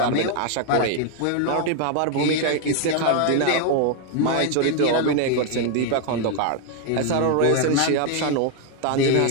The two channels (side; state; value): both; different; correlation 0.01